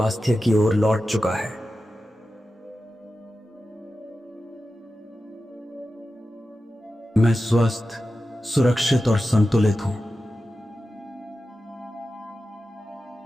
की ओर लौट चुका है। मैं स्वस्थ, सुरक्षित और संतुलित हूं।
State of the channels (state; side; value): normal; both; correlation 0.93